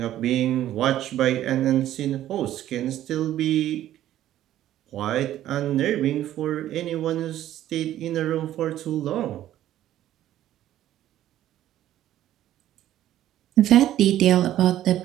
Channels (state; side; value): quieter; left; 12.8 dB